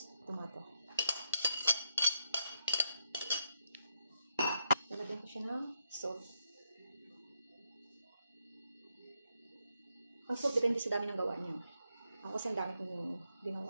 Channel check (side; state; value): both; inverted; correlation -0.79